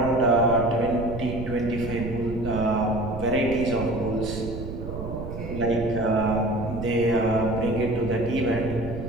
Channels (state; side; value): noise; right; rumble, 8 dB below the sound